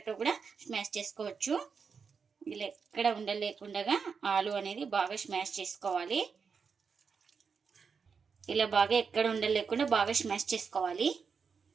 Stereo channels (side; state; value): left; quieter; 5.8 dB